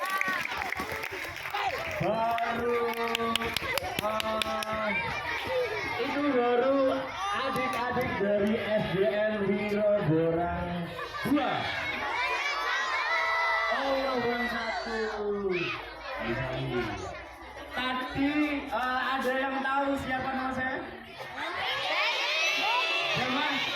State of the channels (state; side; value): identical; both; correlation 1.00